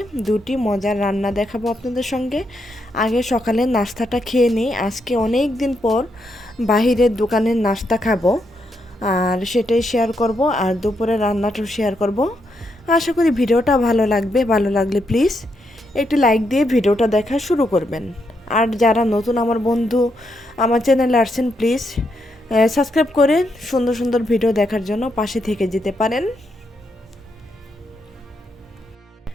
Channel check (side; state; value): both; normal; correlation 0.80